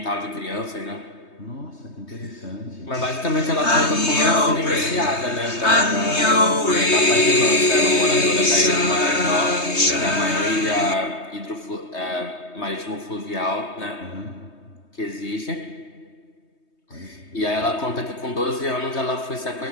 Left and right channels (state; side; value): late; right; 3.2 ms